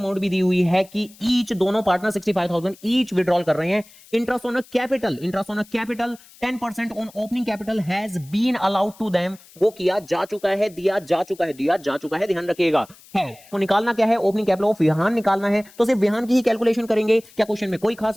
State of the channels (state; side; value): noise; left; hiss, 24 dB below the sound